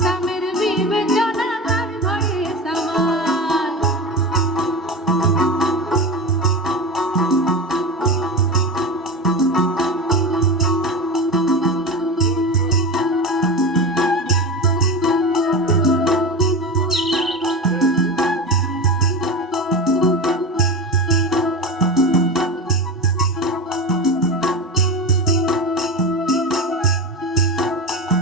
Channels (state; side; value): normal; both; correlation 0.24